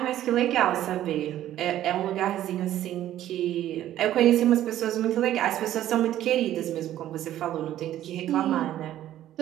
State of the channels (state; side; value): quieter; left; 12.7 dB